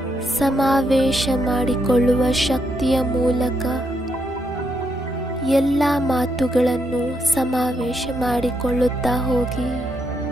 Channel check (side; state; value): both; normal; correlation 0.78